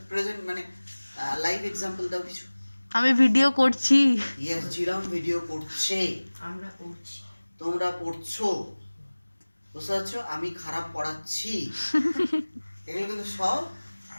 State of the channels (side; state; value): both; inverted; correlation -1.00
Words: প্রেজেন্ট মানে লাইভ এক্সাম্পল দাও কিছু। আমি ভিডিও করছি। ইয়েস, জিরাম ভিডিও করছে, আমরা করছি, তোমরা পড়ছো, বুঝতে পারছো? আমি খারাপ পড়াচ্ছি। এগুলো কিন্তু সব